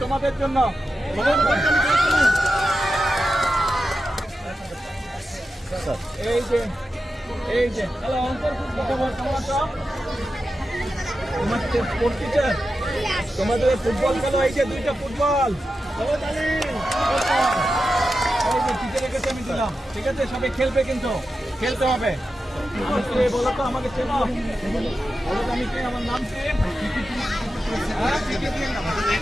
তোমাদের জন্য। এই যে হ্যালো, কেমন আছো? তোমার স্পোর্টস টিচার, তোমাদের ফুটবল খেলো। এই যে দুইটা ফুটবল, টিচারের কাছে আমি দিলাম। ঠিক আছে, সবাই খেলবে, কিন্তু খেলতে হবে। বলো তো, আমাকে চেনো? বলো তো আমি কে, আমার নাম কি?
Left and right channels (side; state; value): both; normal; correlation 0.91